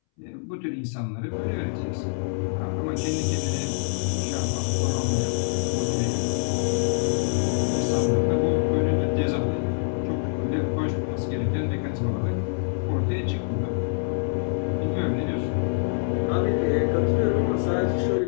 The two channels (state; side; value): silent; right; 61 dB below the other